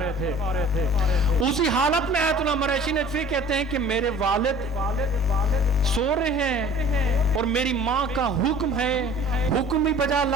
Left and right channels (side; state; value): both; normal; correlation 0.47